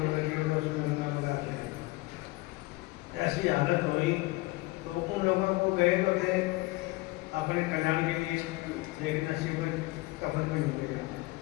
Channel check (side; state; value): right; quieter; 21.9 dB